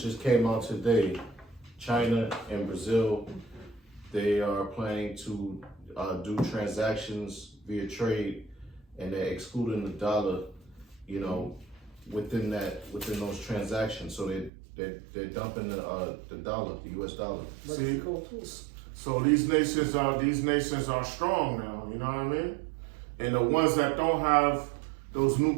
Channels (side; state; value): left; drops out; at 14.5 s